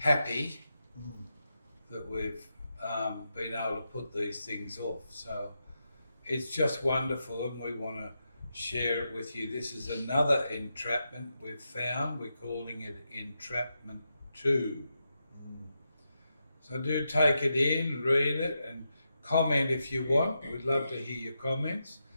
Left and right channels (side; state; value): both; inverted; correlation -0.86